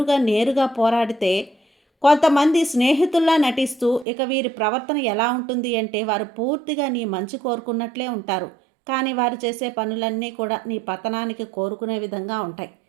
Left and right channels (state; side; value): drops out; left; at 4.0 s